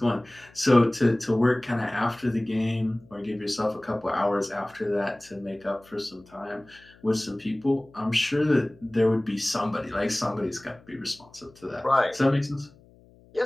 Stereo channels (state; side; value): noise; left; hum, 27 dB below the sound